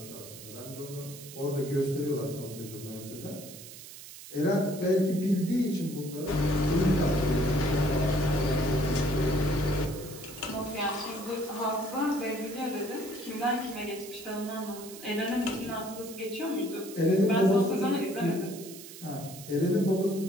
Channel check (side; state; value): right; noise; hiss, 15 dB below the sound